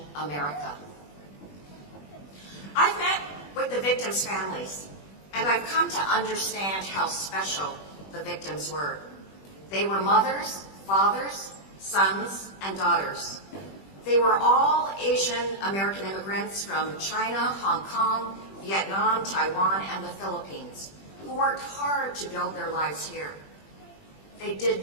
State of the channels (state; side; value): late; right; 21 ms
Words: America. I've met with the victims' families, and I've come to understand how special the victims were. They were mothers, fathers, sons, and daughters. They were all Asian American immigrants from China, Hong Kong, Vietnam, Taiwan, and the Philippines, who worked hard to build their lives here. They